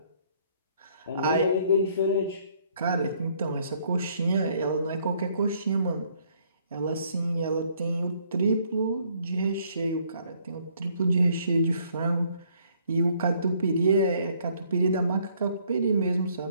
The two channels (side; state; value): both; inverted; correlation -0.65